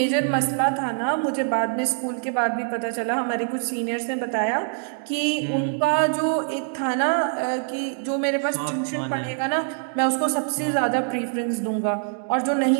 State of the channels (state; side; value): silent; left; digital silence